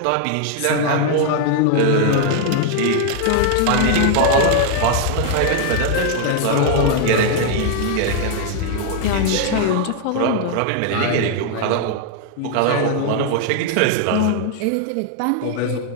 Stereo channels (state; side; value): different; both; correlation 0.00